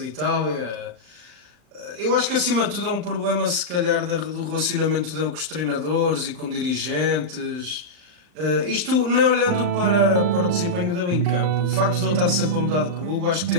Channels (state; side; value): late; left; 39 ms